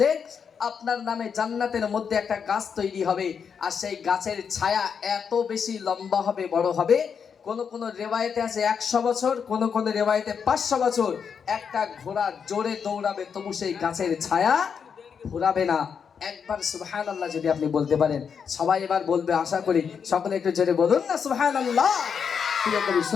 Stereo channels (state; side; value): quieter; right; 6.7 dB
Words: আপনার নামে জান্নাতের মধ্যে একটা গাছ তৈরি হবে, আর সেই গাছের ছায়া এত বেশি লম্বা হবে, বড় হবে। কোন কোন রেওয়ায়েতে আছে 100 বছর, কোন কোন রেওয়ায়েতে 500 বছর। একটা ঘোড়া জোরে দৌড়াবে তবু সেই গাছের ছায়া ঘোরাবে না। একবার সুবহানাল্লাহ যদি আপনি বলতে পারেন, সবাই এবার বলবে আশা করি, সকলে একটু জোরে বলুন না সুবহানাল্লাহ। প্রিয় কবি